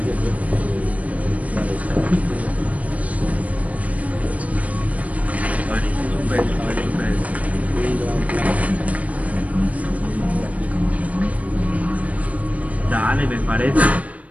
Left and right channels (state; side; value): late; left; 0.069 ms